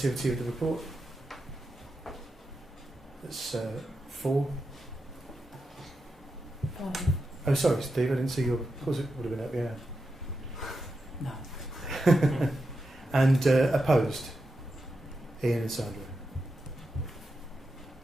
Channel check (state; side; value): normal; both; correlation 0.88